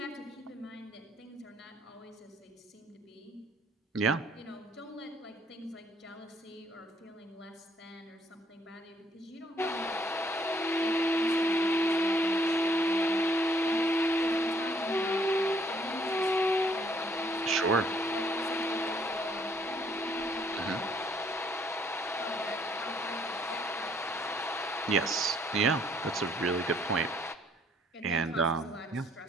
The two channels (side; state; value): both; normal; correlation 0.65